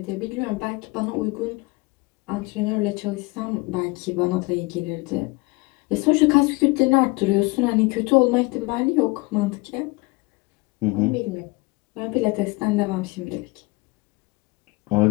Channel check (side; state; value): right; quieter; 25.3 dB